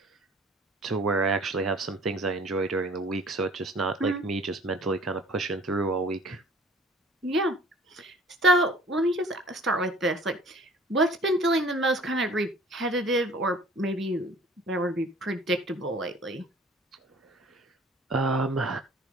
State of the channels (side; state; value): both; normal; correlation 0.50